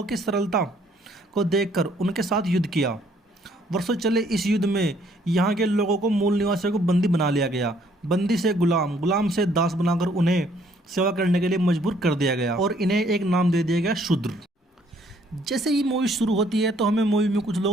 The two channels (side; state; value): both; normal; correlation 0.64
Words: की सरलता को देखकर उनके साथ युद्ध किया। वर्षों चले इस युद्ध में यहाँ के लोगों को, मूल निवासियों को बंदी बना लिया गया। बंदी से गुलाम, गुलाम से दास बनाकर उन्हें सेवा करने के लिए मजबूर कर दिया गया और इन्हें एक नाम दे दिया गया, शूद्र। जैसे ही मूवी शुरू होती है तो हमें मूवी में कुछ